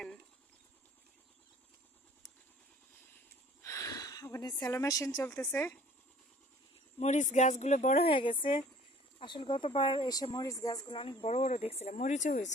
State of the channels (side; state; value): both; normal; correlation 0.51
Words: ওখানে স্যালো মেশিন চলতেছে। মরিচ গাছগুলো বড় হয়ে গেছে। আসলে গতবার এসে মরিচ গাছগুলো অনেক বড় বড় দেখছিলাম, মরিচও